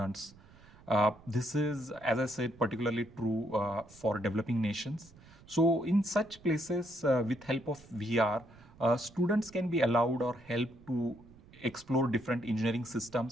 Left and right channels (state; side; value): noise; right; rumble, 24 dB below the sound